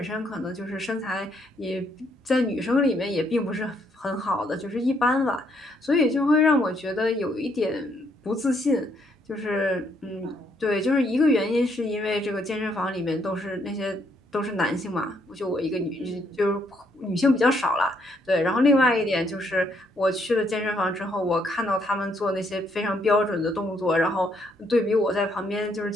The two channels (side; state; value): both; normal; correlation 0.72